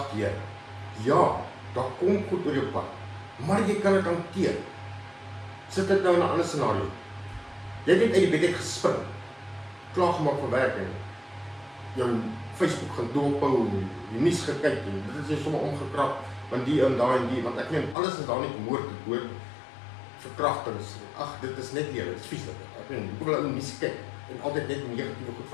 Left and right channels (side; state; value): right; drops out; at 17.9 s